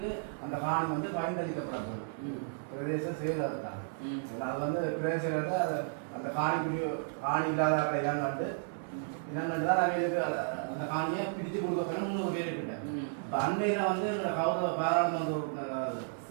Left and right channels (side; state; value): left; silent; 56 dB below the other